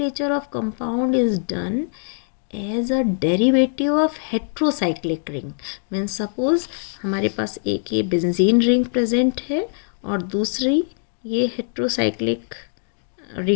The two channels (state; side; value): silent; right; digital silence